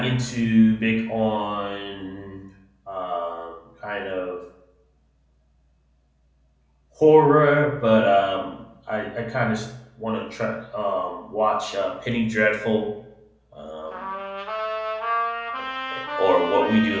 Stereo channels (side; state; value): both; identical; correlation 1.00